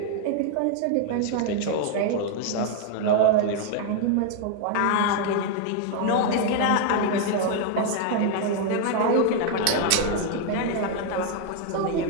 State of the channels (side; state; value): both; different; correlation 0.00